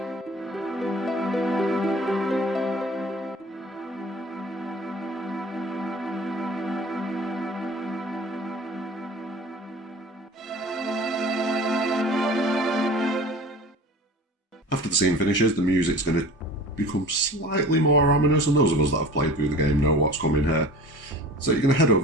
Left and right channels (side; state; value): both; normal; correlation 0.41